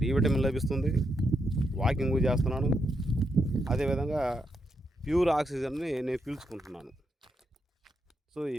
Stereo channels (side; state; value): both; normal; correlation 0.81